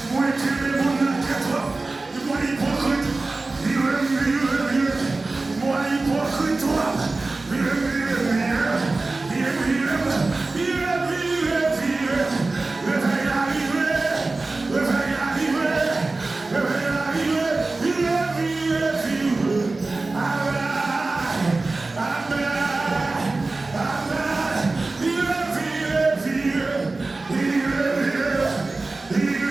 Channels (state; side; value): quieter; left; 3.4 dB